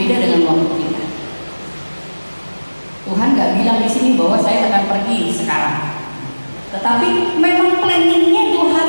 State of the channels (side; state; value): both; inverted; correlation -1.00